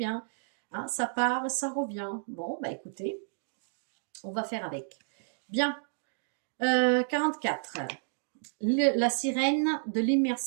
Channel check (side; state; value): left; silent; digital silence